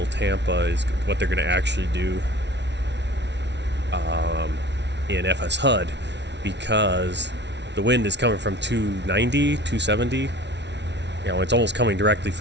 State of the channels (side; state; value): left; late; 0.51 ms